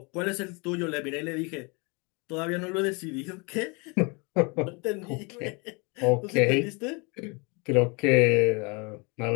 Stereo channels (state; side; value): quieter; right; 30.1 dB